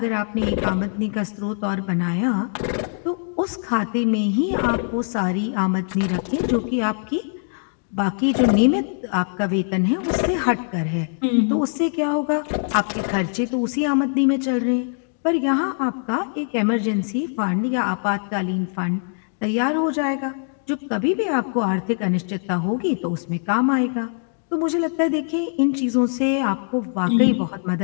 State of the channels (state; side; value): silent; right; 63 dB below the other